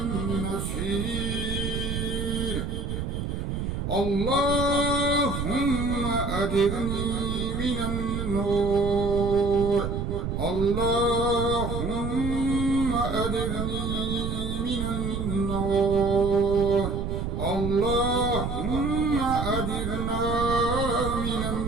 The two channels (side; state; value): right; noise; rumble, 3 dB below the sound